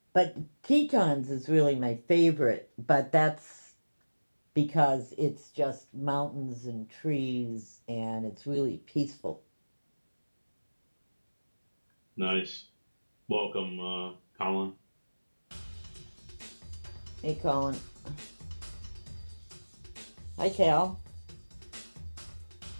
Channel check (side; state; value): both; inverted; correlation -1.00